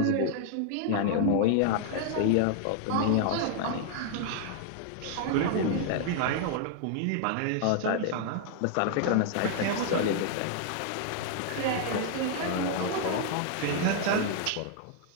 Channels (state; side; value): different; both; correlation 0.00